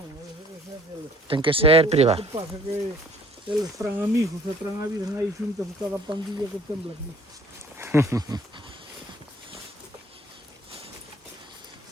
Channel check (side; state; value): both; normal; correlation 0.55